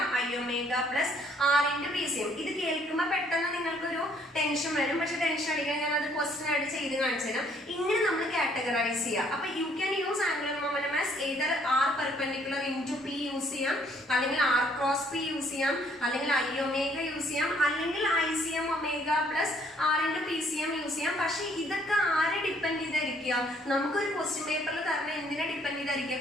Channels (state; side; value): normal; both; correlation 0.64